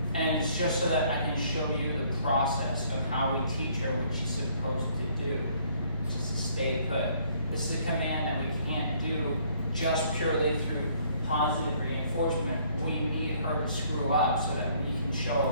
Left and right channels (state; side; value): inverted; both; correlation -0.63